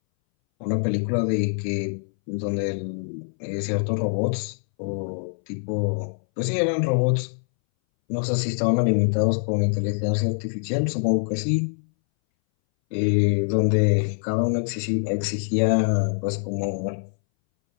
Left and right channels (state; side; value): silent; right; 61 dB below the other